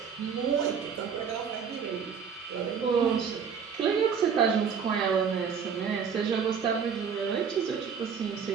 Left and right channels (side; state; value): left; quieter; 6.7 dB